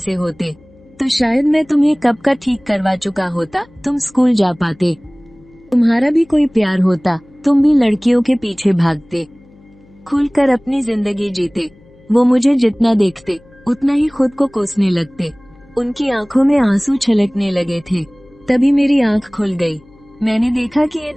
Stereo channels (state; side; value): noise; left; hum, 28 dB below the sound